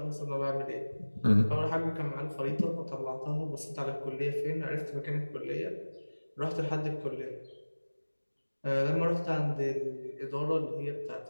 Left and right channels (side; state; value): both; inverted; correlation -1.00